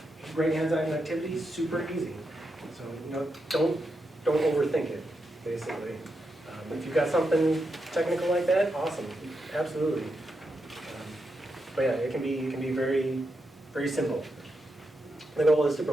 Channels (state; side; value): normal; both; correlation 0.85